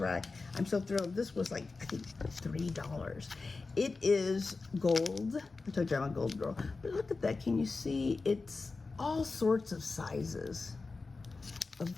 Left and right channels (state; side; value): quieter; right; 3.9 dB